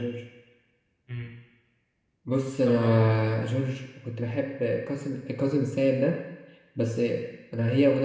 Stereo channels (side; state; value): both; identical; correlation 1.00